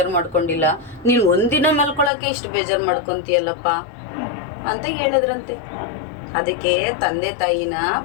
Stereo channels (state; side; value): drops out; right; at 2.1 s